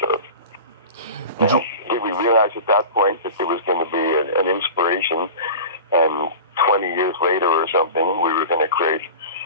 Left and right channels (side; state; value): both; inverted; correlation -0.34